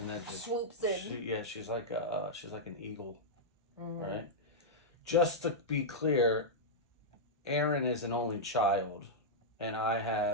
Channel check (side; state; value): both; normal; correlation -0.08